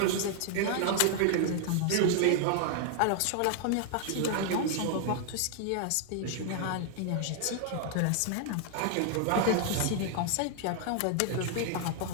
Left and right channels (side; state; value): both; different; correlation 0.00